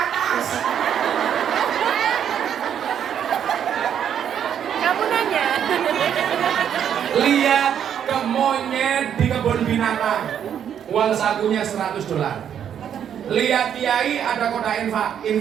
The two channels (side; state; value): left; quieter; 9.0 dB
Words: Kamu nanya. Lihat ke monyet di kebun binatang, uang sakunya $100. Lihat kiai ada kotak